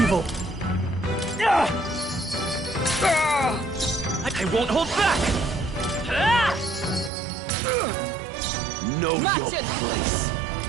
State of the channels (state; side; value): drops out; left; at 7.1 s